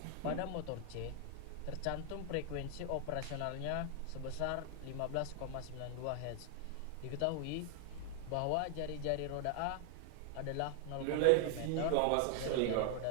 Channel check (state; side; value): different; both; correlation 0.00